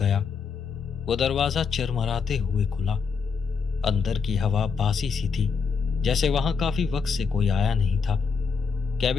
वो दरवाजा चरमराते हुए खुला। अंदर की हवा बासी सी थी, जैसे वहां काफी वक्त से कोई आया नहीं था।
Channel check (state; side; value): quieter; right; 5.7 dB